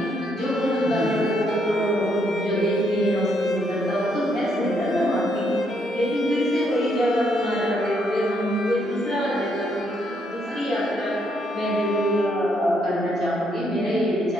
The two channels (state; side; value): normal; both; correlation 0.74